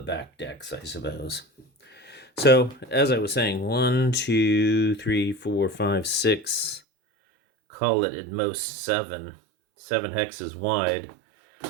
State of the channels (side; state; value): left; drops out; at 6.8 s